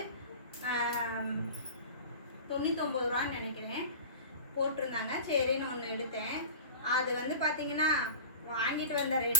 99 ரூபான்னு நினைக்கிறேன் போட்டிருந்தாங்க. சரின்னு ஒன்று எடுத்தேன். அது வந்து பார்த்தீங்கன்னா வாங்கிட்டு வந்த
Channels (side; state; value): both; inverted; correlation -0.36